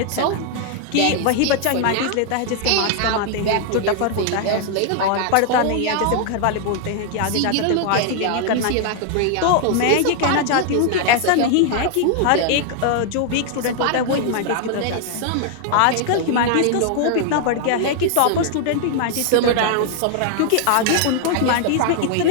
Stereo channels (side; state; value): both; different; correlation 0.00